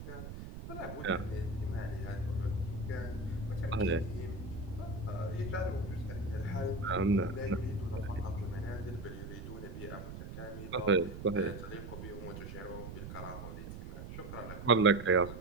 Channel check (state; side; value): noise; right; rumble, 9 dB below the sound